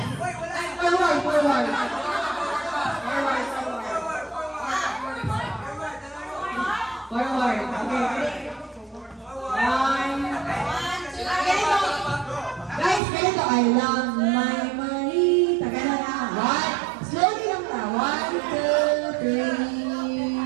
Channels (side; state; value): left; drops out; at 13.0 s